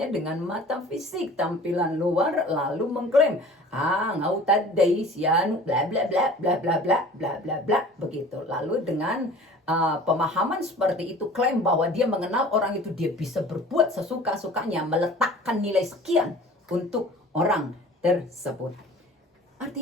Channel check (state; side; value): normal; both; correlation 0.44